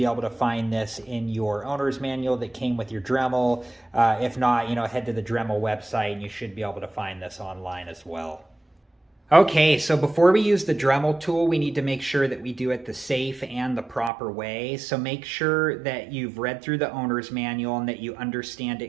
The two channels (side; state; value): left; drops out; at 14.1 s